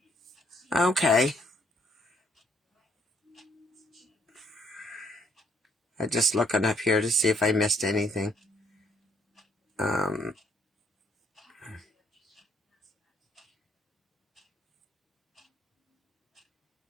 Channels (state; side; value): normal; both; correlation 0.67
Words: Okay. I'm just looking up here to see if I missed anything.